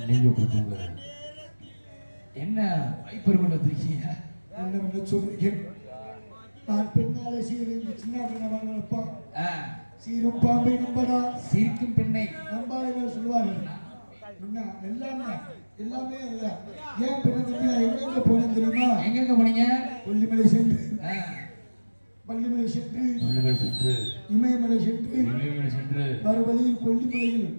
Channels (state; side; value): inverted; both; correlation -1.00